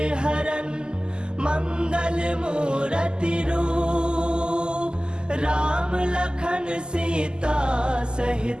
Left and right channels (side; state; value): left; late; 0.046 ms